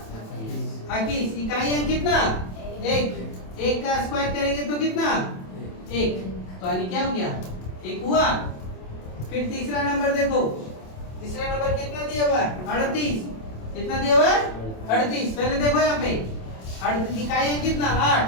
21। इकाई अंक कितना 1 का स्क्वायर करेंगे तो कितना 1। तो यानी क्या हो गया, 1 हुआ। फिर तीसरा नंबर देखो, तीसरा नंबर कितना दिया हुआ है 38, कितना दिया हुआ है 38। पहले देखो यहाँ पे 38 इकाई अंक कितना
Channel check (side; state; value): right; late; 27 ms